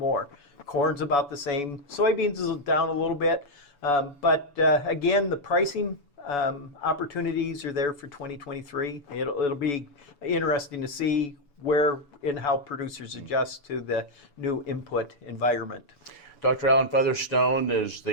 Corn's about the same. Soybeans is down a little bit, but again, the pricing opportunities are there for 2023. It'll be interesting to see where and how producers adjust to the new input environment. Dr. Alan Featherstone is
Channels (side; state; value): right; late; 7.0 ms